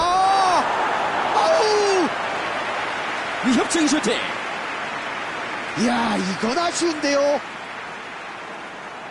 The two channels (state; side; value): identical; both; correlation 1.00